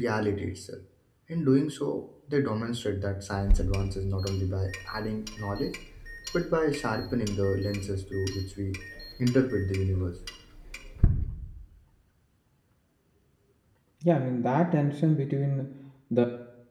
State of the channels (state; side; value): identical; both; correlation 1.00